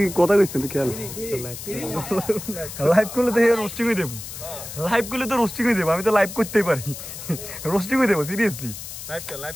কথা কইছিস তুই খেল লাইভ করলে তো রোস্টিং হয়ে দেব লাইভ করলে তো রোস্টিং হয়ে দেব আমি তো লাইভ করতেই পারি রোস্টিং হয়ে দেব সিরিয়াসলি লাইভ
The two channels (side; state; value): left; noise; hiss, 10 dB below the sound